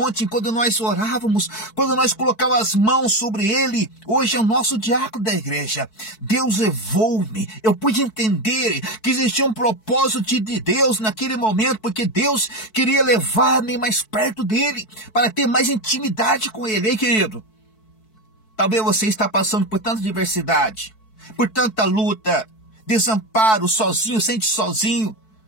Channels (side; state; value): right; late; 4.6 ms